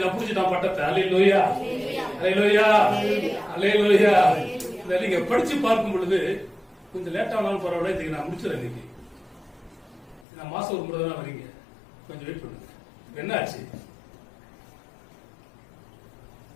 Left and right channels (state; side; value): drops out; right; at 10.2 s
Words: புடிச்சுட்டான் பட்டத்தை. அல்லேலூயா, அல்லேலூயா, அல்லேலூயா. நீங்க படிச்சு பார்க்கும் பொழுது கொஞ்சம் லேட் ஆனாலும் பரவாயில்ல. இதுக்கு நான் முடிச்சிடறேன். இன்னைக்கு நான் மாசம் ஒரு முறை தான் வரீங்க. கொஞ்சம் வெயிட் பண்ணுங்க. என்ன ஆச்சு?